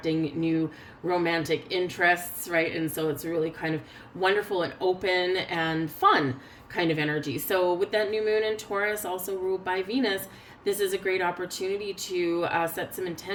new romantic interests, right? And so it's really kind of wonderful and open and fun kind of energy. So with that new moon in Taurus, also ruled by Venus, this is a great opportunity to set some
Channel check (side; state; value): both; identical; correlation 1.00